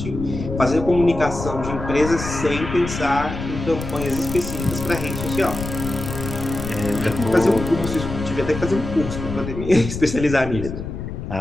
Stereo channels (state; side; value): noise; left; rumble, 7 dB below the sound